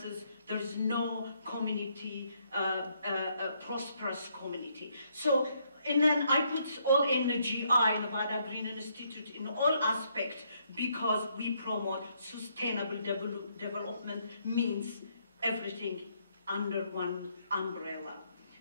there's no community, a prosperous community. So, and then I put all NGI, Nevada Green Institute, in all aspects because we promote sustainable development, means everything under one umbrella.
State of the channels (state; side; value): inverted; both; correlation -0.72